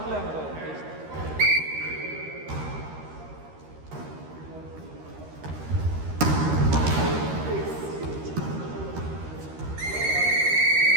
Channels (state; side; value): late; left; 13 ms